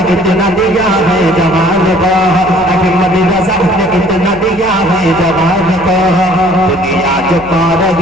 इतना दिया है जवान को, अहमद रज़ा ने इतना दिया है जवान को। दुनिया जो पा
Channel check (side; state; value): left; noise; hum, 17 dB below the sound